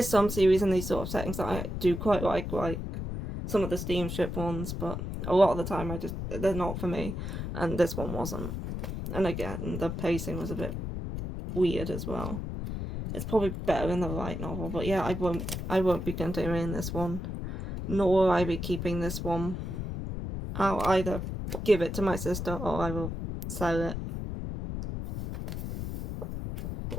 some series in these sort of settings that I do quite like some of the steamship ones, but a lot of the time they're not for me, and this one wasn't. And again, the pacing was a bit weird as well. It's probably better in the light novel, but yeah, I won't be continuing this one, nor will I be keeping this one. I'll either give it to my sister or I will sell it.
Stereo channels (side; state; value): left; noise; rumble, 5 dB below the sound